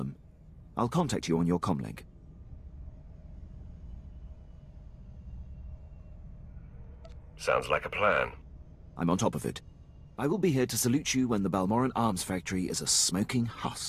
I'll contact you on your comlink. Sounds like a plan. I'm on top of it. I will be here to salute you when the Balmorran arms factory is a smoking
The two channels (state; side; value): identical; both; correlation 1.00